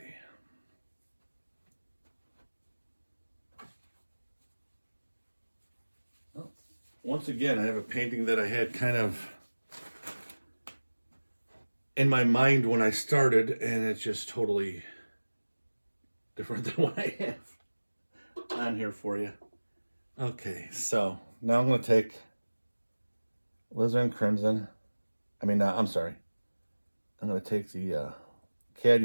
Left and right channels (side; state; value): both; inverted; correlation -1.00